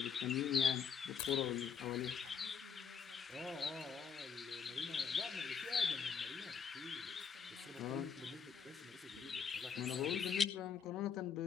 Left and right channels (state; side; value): quieter; right; 6.5 dB